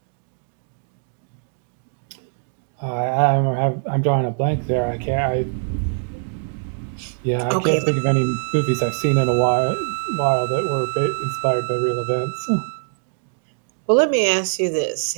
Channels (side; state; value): left; silent; digital silence